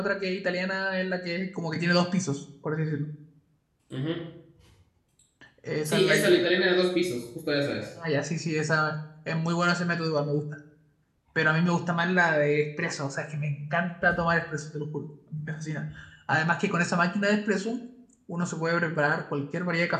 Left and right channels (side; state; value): both; identical; correlation 1.00